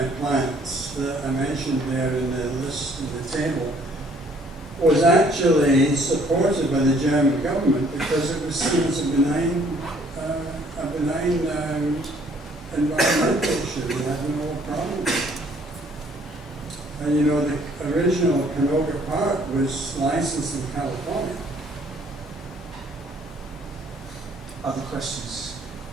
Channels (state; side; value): normal; both; correlation 0.61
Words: plants that I mentioned there in the list in the table was actually supported by the German government because it was seen as a benign environmental issue. They had no problem. And you know, the original Canoga Park was licensed in California. Other questions?